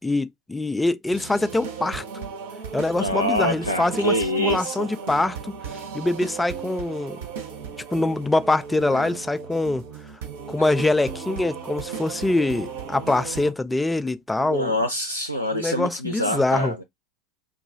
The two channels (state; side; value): normal; both; correlation 0.64